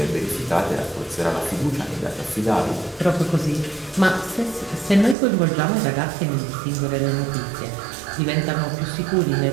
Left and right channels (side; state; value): left; drops out; at 5.2 s